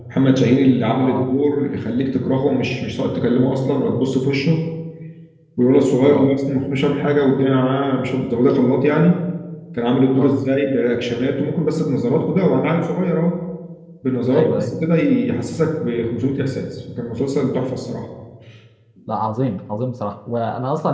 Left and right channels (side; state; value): both; identical; correlation 1.00